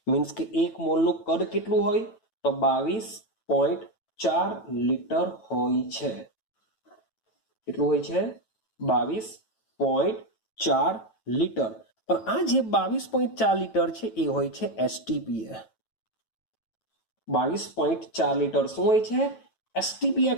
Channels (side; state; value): right; late; 9.1 ms